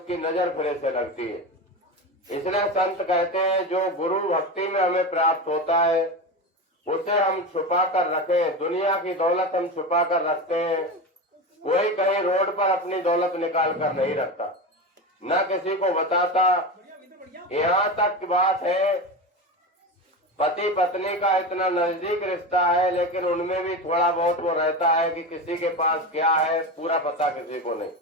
नजर फिर से लगती है। इसलिए संत कहते हैं जो गुरु भक्ति में हमें प्राप्त होता है उसे हम छुपा कर रखें। दुनिया की दौलत हम छुपा कर रखते हैं, कोई कहीं रोड पर अपनी दौलत निकाल कर नहीं रखता, न किसी को बताता। यहाँ तक की बात है, पति पत्नी का इतना नजदीक रिश्ता है, लेकिन उनमें भी थोड़ा बहुत वो रहता है कि किसी के पास क्या है पूरा पता किसी को नहीं।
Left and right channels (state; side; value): normal; both; correlation 0.22